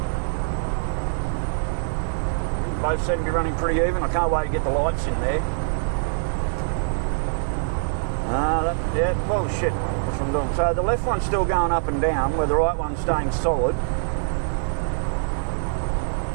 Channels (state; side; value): silent; left; digital silence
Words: Both seem to be running pretty even. I can't wait to get the lights in there. Yeah, well shit, that's what I'm doing. So the left one's still going up and down, where the right one's staying solid.